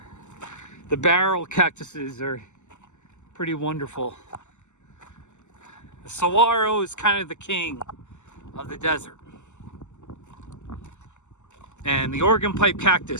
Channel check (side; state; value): right; late; 0.84 ms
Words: The barrel cactuses are pretty wonderful. The saguaro is kind of the king of the desert. And the Oregon pipe